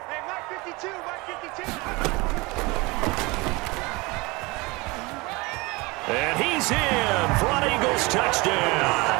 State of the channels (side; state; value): left; quieter; 24.5 dB